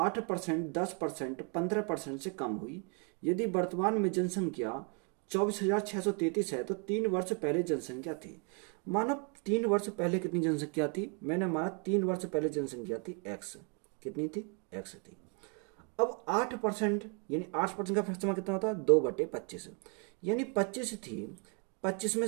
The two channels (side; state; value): left; quieter; 37.6 dB